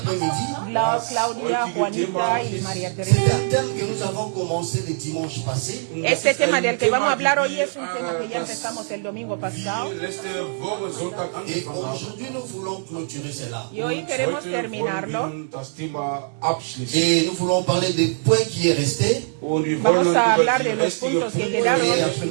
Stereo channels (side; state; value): left; silent; digital silence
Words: Claudia, Juanita y María C'est Teresa. un thème que nous avons commencé le dimanche passé. Este tema del que vamos a hablar hoy es un tema que ya empezamos el domingo pasado. Et aujourd'hui, nous voulons clôturer cela. Y hoy queremos terminarlo. Et nous voulons parler des points qui est resté. Vamos a hablar de los puntos que quedaron Et après,